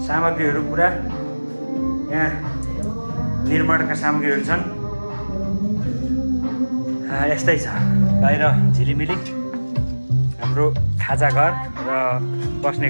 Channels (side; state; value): both; inverted; correlation -1.00